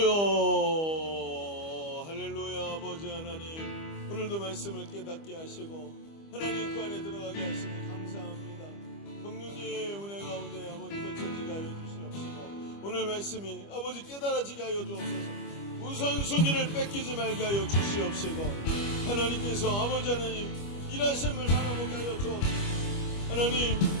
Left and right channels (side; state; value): right; late; 25 ms